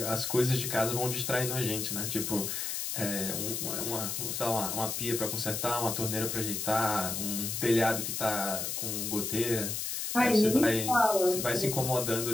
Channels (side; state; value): left; noise; hiss, 3 dB below the sound